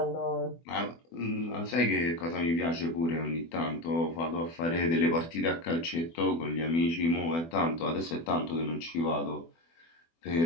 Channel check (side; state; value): right; late; 24 ms